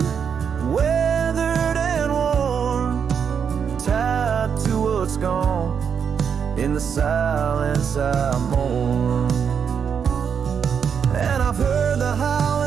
weathered and worn, tied to what's gone. In the silence I mourn. And I've heard the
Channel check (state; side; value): quieter; left; 7.1 dB